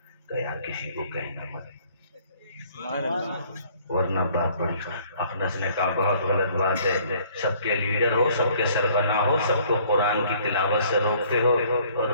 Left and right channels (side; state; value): both; inverted; correlation -0.58